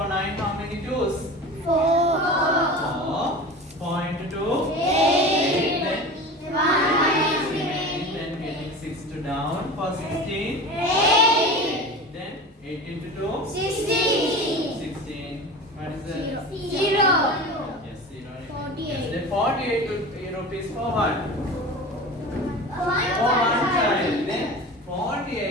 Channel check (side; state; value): both; normal; correlation 0.33